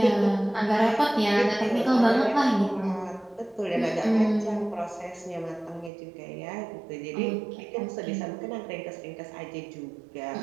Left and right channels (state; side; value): drops out; left; at 5.9 s